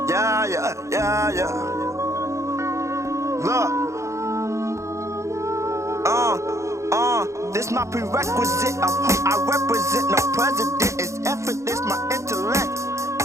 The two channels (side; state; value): left; late; 0.14 ms